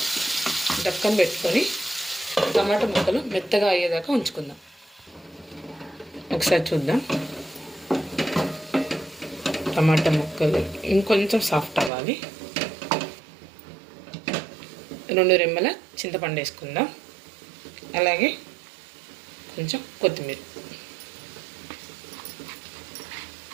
డక్కన పెట్టుకొని టమాటా ముక్కలు మెత్తగా అయ్యేదాకా ఉంచుకుందాం. ఒకసారి చూద్దాం. టమాటా ముక్కలు ఇంకొంచెం సాఫ్ట్ అవ్వాలి. 2 రెమ్మల చింతపండు వేసుకుందాం. అలాగే కొంచెం కొత్తిమీర.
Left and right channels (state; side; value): drops out; left; at 11.9 s